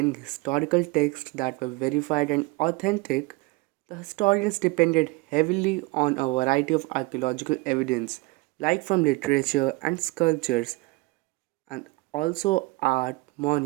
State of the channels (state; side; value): quieter; left; 23.4 dB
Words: historical texts that were verified and authentic, the historians depended heavily on a variety of archaeological evidence, like from literature and sculptures, and also art,